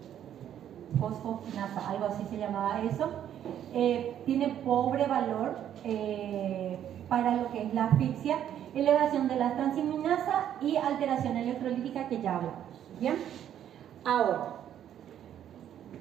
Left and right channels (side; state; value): left; quieter; 10.3 dB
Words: fosfokinasa, algo así se llamaba eso. Tiene pobre valor para lo que es la asfixia, elevación de la transaminasa y alteración electrolítica que ya hablamos. ¿Bien? Ahora,